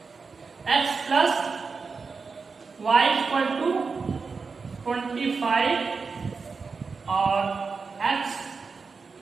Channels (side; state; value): left; quieter; 4.8 dB